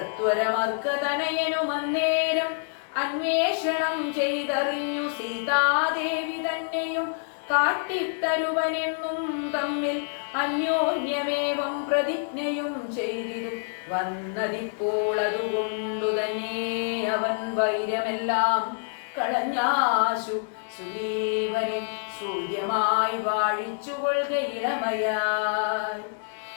അന്വേഷണം ചെയ്തറിഞ്ഞു സീതാദേവി തന്നെയും കാട്ടിത്തരുവനെന്നും തമ്മിൽ അന്യോന്യമേവം പ്രതിജ്ഞയും ചെയ്തിരു വന്നതിപ്പോൾ അതുകൊണ്ടു തന്നെ അവൻ വൈരമെല്ലാം കളഞ്ഞാശു സുഗ്രീവനെ സൂര്യമായി വാഴിച്ചുകൊള്ളുക ഇളമയായി.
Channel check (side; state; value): right; silent; digital silence